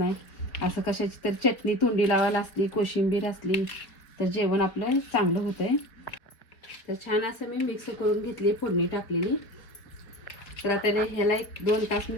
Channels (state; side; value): late; right; 4.4 ms